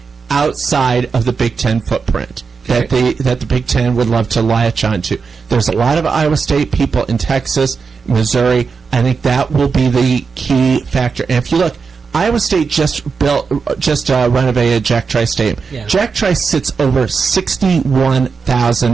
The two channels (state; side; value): quieter; left; 5.2 dB